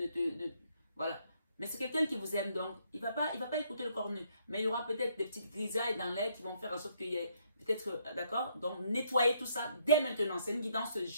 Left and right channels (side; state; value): both; inverted; correlation -0.70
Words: voilà. Mais c'est quelqu'un qui vous aime, donc il va pas écouter le cornu. Mais il y aura peut-être des petites grisailles dans l'air qui vont faire en sorte qu'il y ait peut-être, d'accord? Donc nettoyez tout ça dès maintenant. C'est une guidance